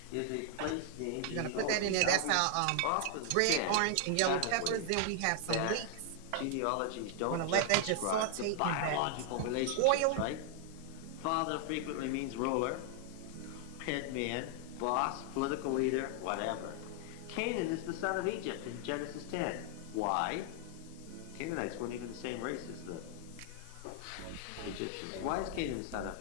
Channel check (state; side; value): different; both; correlation 0.00